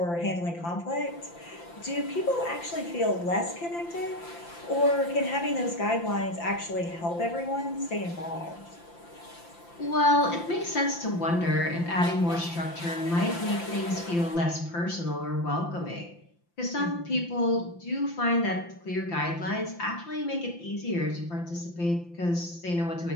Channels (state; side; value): late; right; 5.8 ms